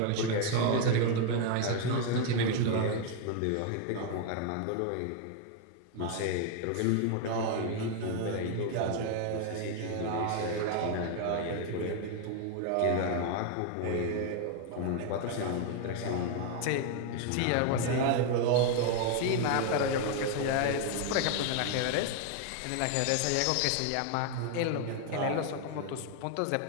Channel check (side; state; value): both; different; correlation 0.00